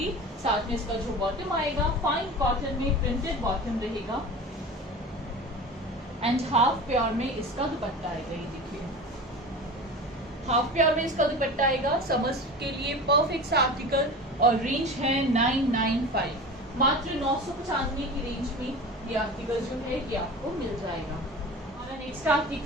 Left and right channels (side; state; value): both; normal; correlation 0.33